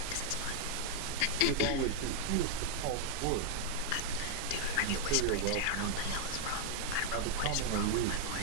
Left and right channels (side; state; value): both; different; correlation 0.00